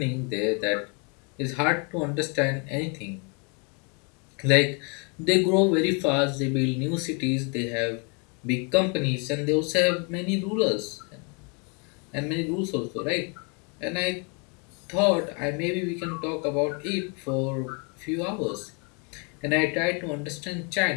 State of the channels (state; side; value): quieter; right; 34.9 dB